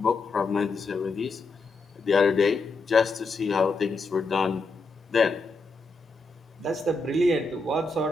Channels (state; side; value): quieter; right; 3.6 dB